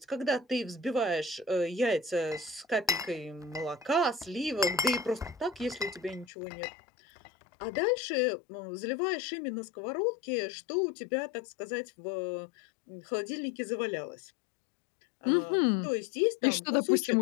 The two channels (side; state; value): right; drops out; at 6.2 s